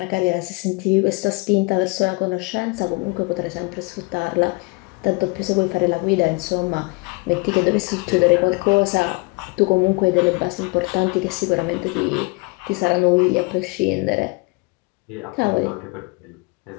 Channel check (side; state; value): right; quieter; 28.0 dB